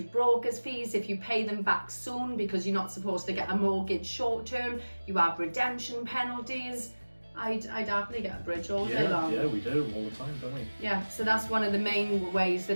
broker's fees, if you pay them back soon because you're not supposed to get a mortgage short term, you have redemption penalties. I'd happily get a bridge all day long. Yeah, we do all the time, don't we? Yeah, so that's one of the main ways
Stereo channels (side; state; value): both; inverted; correlation -1.00